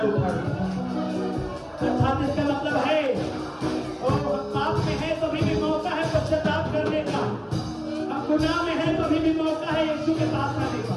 उखाड़ दें। अर्थात इसका मतलब है, हम पाप में है तो भी मौका है पश्चाताप करने का, हम गुनाह में है तो भी मौका है यीशु के पास आने का।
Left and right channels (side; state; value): both; identical; correlation 1.00